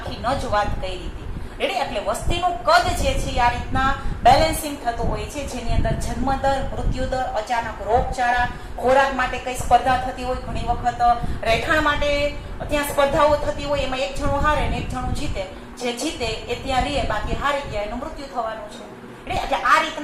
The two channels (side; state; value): both; identical; correlation 1.00